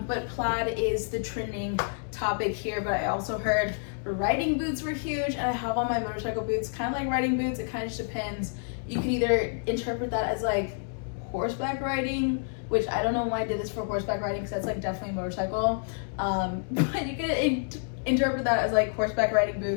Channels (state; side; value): silent; right; digital silence